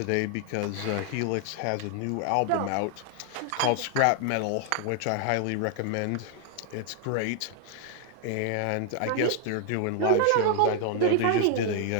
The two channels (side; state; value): both; different; correlation 0.00